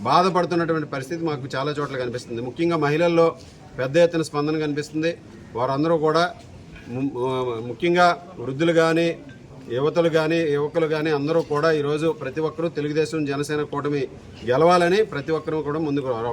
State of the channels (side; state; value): both; identical; correlation 1.00